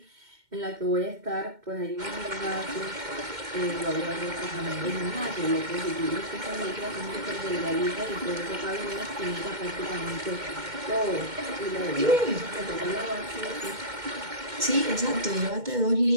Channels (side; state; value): left; late; 2.1 ms